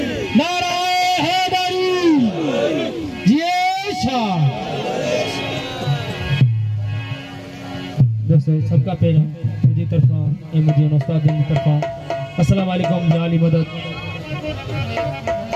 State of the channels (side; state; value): both; identical; correlation 1.00